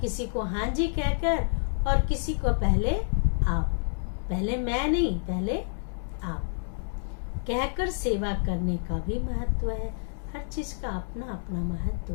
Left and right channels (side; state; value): right; silent; 59 dB below the other